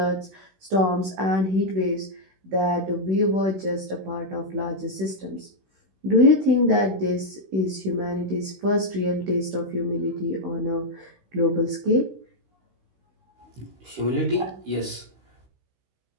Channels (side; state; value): left; late; 16 ms